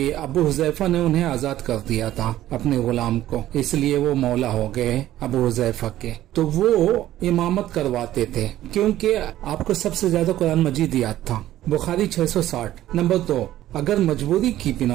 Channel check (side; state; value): left; quieter; 13.6 dB